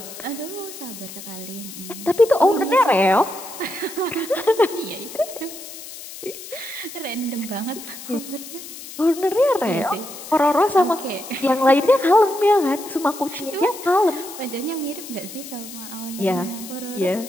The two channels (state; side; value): noise; left; hiss, 13 dB below the sound